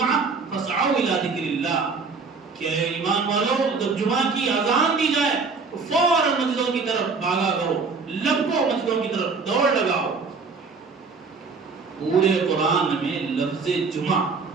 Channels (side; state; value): left; quieter; 4.6 dB